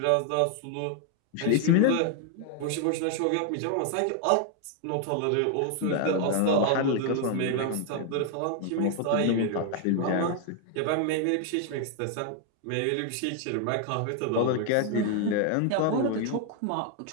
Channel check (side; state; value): both; different; correlation 0.00